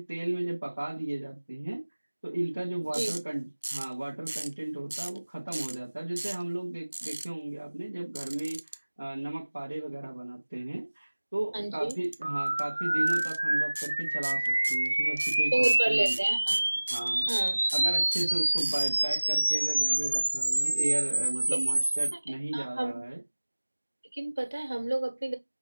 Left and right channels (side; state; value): both; inverted; correlation -1.00